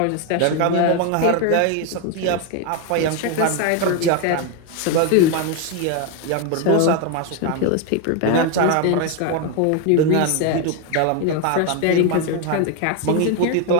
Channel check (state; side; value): different; both; correlation 0.01